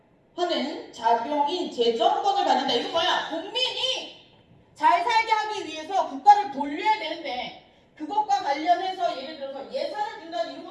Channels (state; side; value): identical; both; correlation 1.00